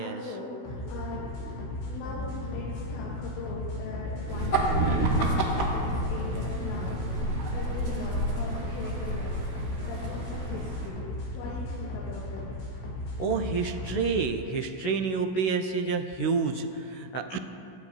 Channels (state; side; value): late; right; 16 ms